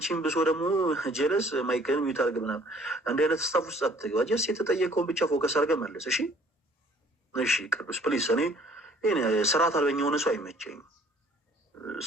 ብሶ ደግሞ ጀለስ ማይክል ሚት አድርግ ምናምን እንዲህ አይነት ስታፍ ውስጥ አትግባ። ጀስ የተጠየቀውን ብቻ ፎከስ አድርገህ መልስ እሺ። እሺ ቅዱስ ፕሊስ። እኔ ስርዓት አልበኛ የሆነ ሰው አይመቸኝም።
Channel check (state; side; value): normal; both; correlation 0.56